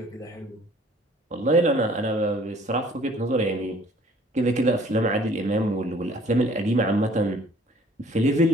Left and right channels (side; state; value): both; normal; correlation 0.55